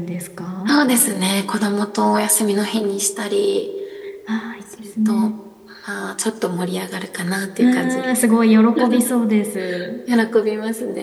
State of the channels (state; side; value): identical; both; correlation 1.00